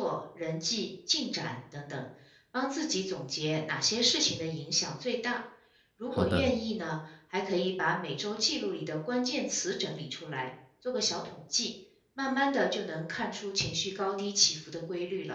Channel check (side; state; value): both; identical; correlation 1.00